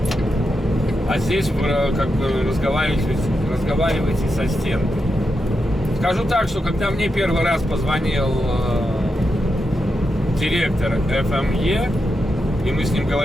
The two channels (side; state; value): both; normal; correlation 0.86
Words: а здесь вы как бы разговариваете со стенкой. Скажу так, что когда мне первый раз позвонил директор ФМЕ, и мы с ним